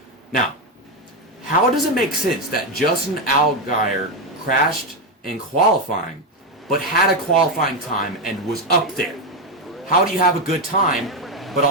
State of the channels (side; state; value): both; normal; correlation 0.09